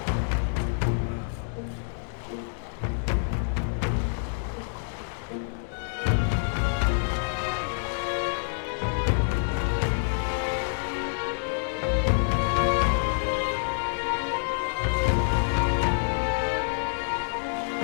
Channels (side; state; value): right; silent; digital silence